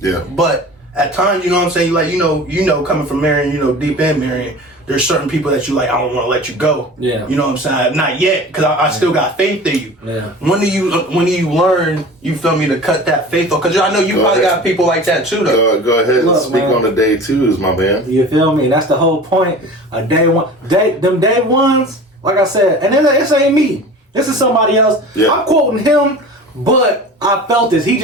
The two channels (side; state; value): both; normal; correlation 0.38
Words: But at times, you know what I'm saying, like, you know, coming from Marion, you know, deep in Marion, there's certain people that you like, I don't want to let you go. Yeah. You know what I'm saying? Not yet, because I still got faith in you. Yeah. When do you learn, you feel me, to cut that faith off? Because I know you probably got people like that too, though. Go ahead and Look, speak man. on the day twos, my man. You feel me? That's the whole point. Day ones, like I said, and then this ain't me. This is somebody else. Yeah. I'm quoting him, but I felt this. He